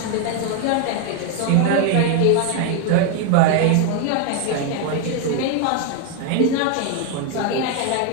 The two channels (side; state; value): both; different; correlation 0.01